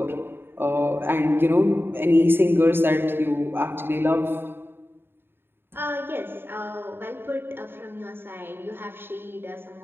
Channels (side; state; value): left; late; 0.11 ms